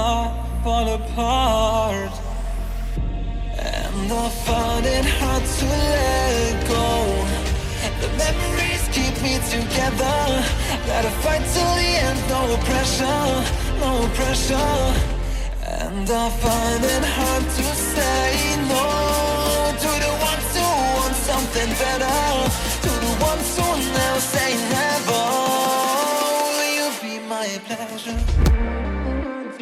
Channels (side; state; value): both; identical; correlation 1.00